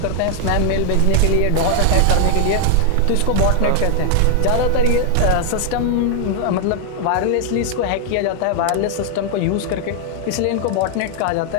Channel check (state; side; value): different; both; correlation 0.00